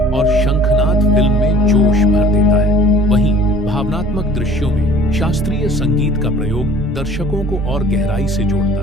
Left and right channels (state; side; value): normal; both; correlation 0.50